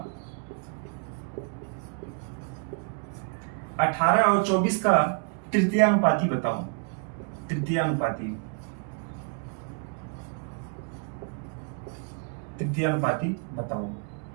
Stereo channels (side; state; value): left; quieter; 39.3 dB